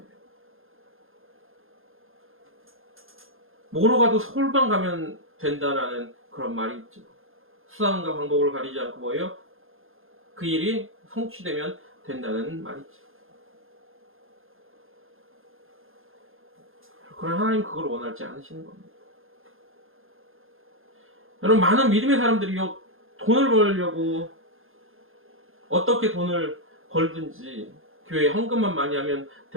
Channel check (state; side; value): late; left; 0.60 ms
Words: 뭐로 가도 서울만 가면 된다라는 그런 말이 있죠. 수단과 방법을 가리지 않고 뭐예요? 그 일이 성취되면 된다는 말이 있죠. 그러나 하나님 그걸 원하지 않으시는 겁니다. 여러분, 많은 믿음의 사람들이요, 돈을 벌려고 어떻게 돈을 벌든지 교회에 헌금만 많이 하면